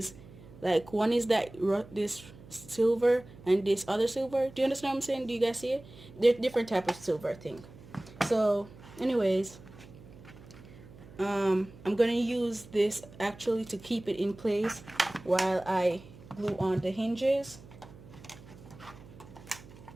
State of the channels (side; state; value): right; noise; hum, 19 dB below the sound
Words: like this silver and this other silver. Do you understand what I'm saying? Do you guys see it? They're different type of silver, I think. So anyways, I'm gonna use this actually to keep it in place while I glue on the hinges.